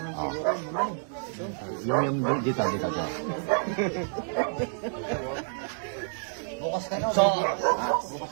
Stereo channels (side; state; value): left; silent; digital silence